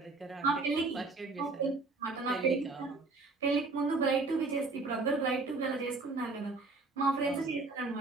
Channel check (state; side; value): quieter; left; 3.7 dB